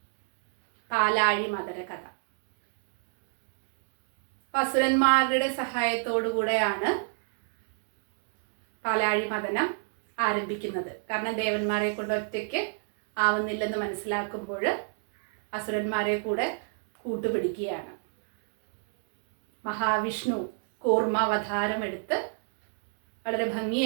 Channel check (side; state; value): left; silent; digital silence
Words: പാലാഴി മദന കഥ. അസുരന്മാരുടെ സഹായത്തോടു കൂടെയാണ് പാലാഴി മദനം ആരംഭിക്കുന്നത്. കാരണം ദേവന്മാരെ കൊണ്ട് ഒറ്റയ്ക്ക് ആവുന്നില്ലെന്ന് മനസ്സിലാക്കുമ്പോൾ അസുരന്മാരെ കൂടെ കൂട്ടുപിടിക്കുകയാണ്. മഹാവിഷ്ണു കൂർമാവതാരമെടുത്ത് വളരെ